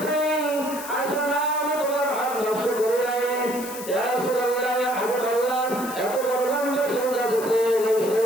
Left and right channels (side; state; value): left; noise; hiss, 12 dB below the sound